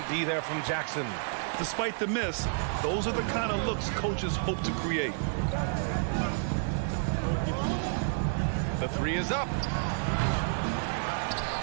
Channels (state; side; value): silent; left; digital silence